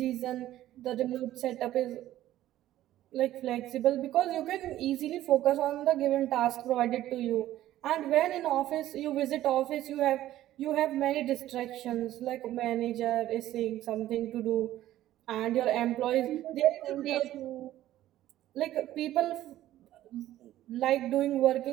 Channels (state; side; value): quieter; left; 13.9 dB